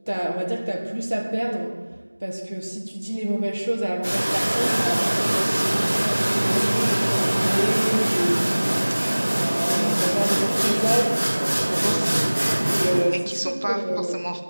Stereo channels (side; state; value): both; inverted; correlation -1.00